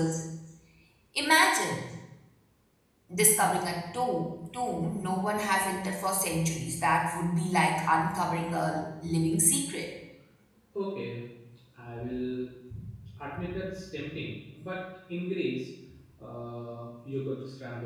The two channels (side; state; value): both; identical; correlation 1.00